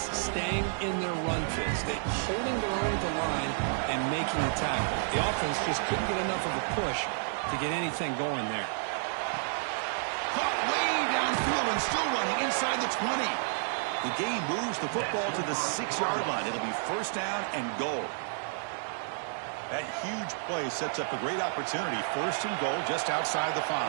staying in their run phase. They're holding their own at the line and making the tackle. The offense just couldn't get enough of a push to get anything going there. Caught way downfield and still running inside the 20. The game moves the football to the 6-yard line. It'll be first down and goal. That huge play sets up a great opportunity. First and goal just outside the 5.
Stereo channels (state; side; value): silent; left; 57 dB below the other